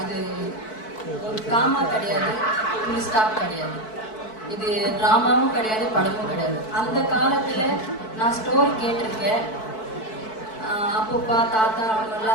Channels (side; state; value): right; late; 4.6 ms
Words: ஒரு காமா கிடையாது, ஃபுல் ஸ்டாப் கிடையாது. இது ட்ராமாவும் கிடையாது, படமும் கிடையாது. அந்த காலத்தில் நான் ஸ்டோரி கேட்டிருக்கேன். அப்பப்பா தாத்தா